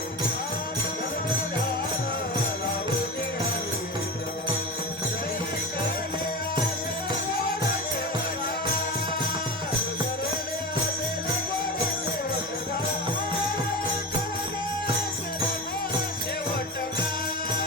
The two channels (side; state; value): both; normal; correlation 0.26